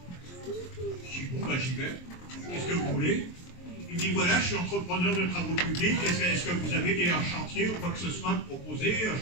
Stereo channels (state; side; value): late; right; 23 ms